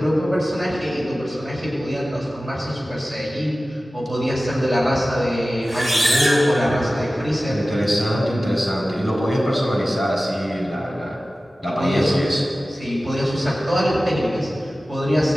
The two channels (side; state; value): both; normal; correlation 0.96